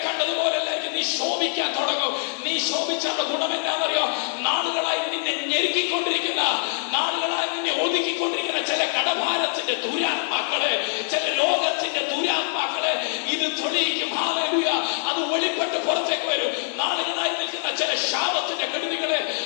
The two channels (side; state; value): right; silent; 62 dB below the other